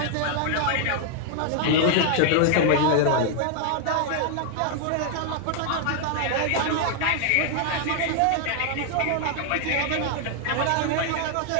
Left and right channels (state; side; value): different; both; correlation 0.00